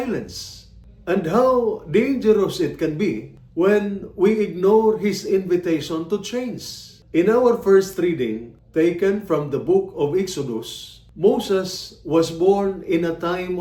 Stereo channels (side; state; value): both; identical; correlation 1.00